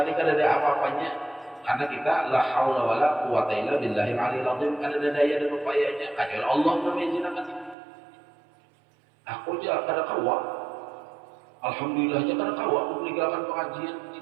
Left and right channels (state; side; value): drops out; left; at 7.8 s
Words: ni kada ada apa-apanya karena kita la haula wala quwata illa billahil aliyil azim kada ada daya dan upayanya kecuali Allah yang mengizinkan. Aku aja kada kawa. Alhamdulillah aja kada kawa meninggalkan pengajian